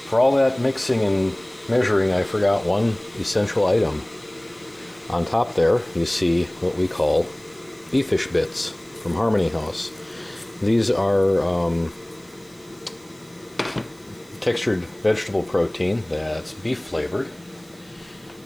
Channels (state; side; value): noise; right; hiss, 28 dB below the sound